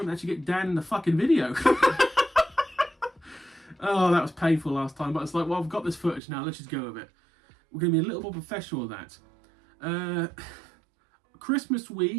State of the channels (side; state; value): left; drops out; at 6.2 s